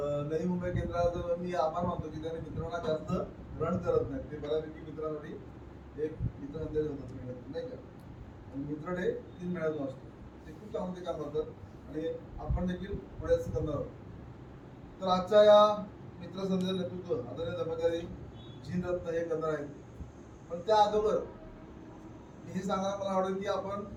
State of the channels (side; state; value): both; identical; correlation 1.00